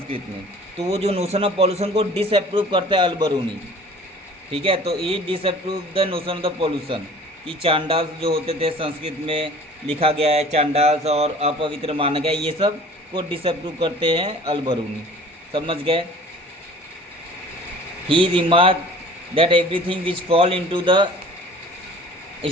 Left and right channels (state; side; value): normal; both; correlation 0.46